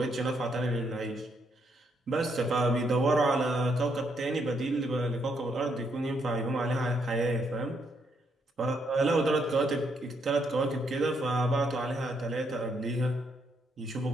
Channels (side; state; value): both; normal; correlation 0.75